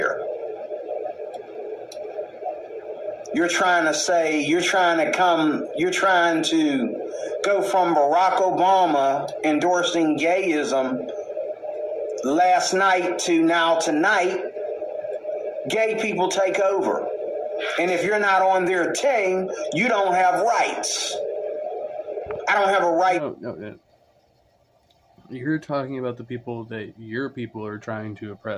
You're trying to go from Barack Obama endorsing gayism last night to now tonight. Gay people take over. And if you're not on their team, you don't have rights. I don't have a right. No. You're talking about the people that your people are trying to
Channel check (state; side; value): identical; both; correlation 1.00